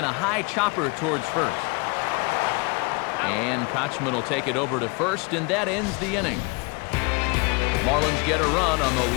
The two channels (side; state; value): right; quieter; 29.1 dB